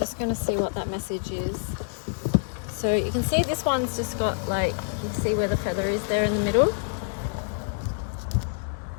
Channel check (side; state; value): right; silent; digital silence